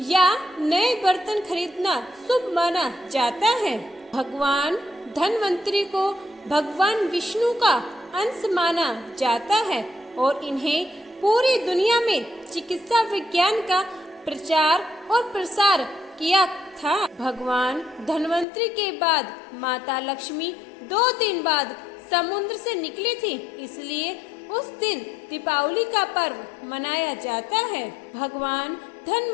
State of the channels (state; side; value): drops out; right; at 18.4 s